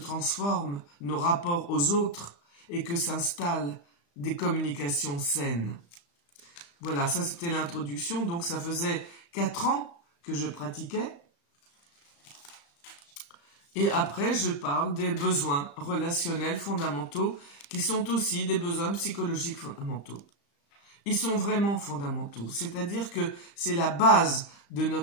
nos rapports aux autres et que s'installent des communications saines. Voilà, ça c'était l'introduction, donc ça faisait 4 ans que je pratiquais. Et après, je parle des besoins relationnels fondamentaux qui sont aussi des besoins psychologiques fondamentaux. Ils sont vraiment fondamentaux, c'est-à-dire que c'est la base de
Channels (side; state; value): right; late; 35 ms